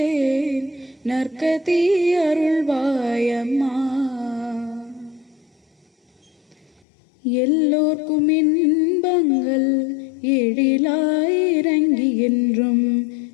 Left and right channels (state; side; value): drops out; right; at 6.8 s